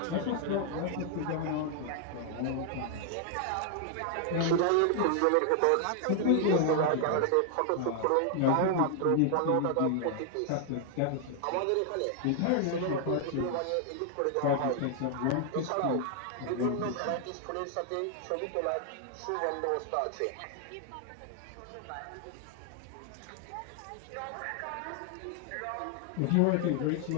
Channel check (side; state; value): both; different; correlation 0.00